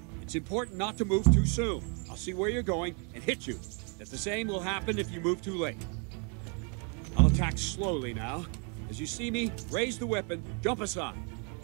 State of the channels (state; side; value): quieter; left; 37.4 dB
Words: It's important not to move too soon. I'll see where you're going and hit you. That the same will happen if you move too late. I'll attack slowly now. As you see me, raise the weapon, jump aside.